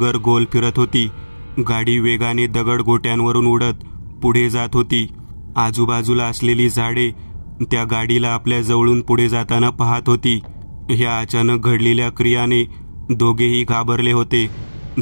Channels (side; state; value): both; inverted; correlation -1.00